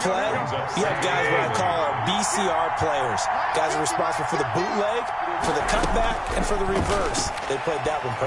you have guys what I call our BCR players. Guys are responsible for the bootleg, for the cutback, and for the reverse. They played that one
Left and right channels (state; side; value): identical; both; correlation 1.00